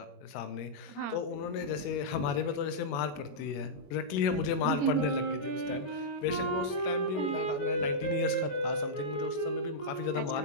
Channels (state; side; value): late; right; 21 ms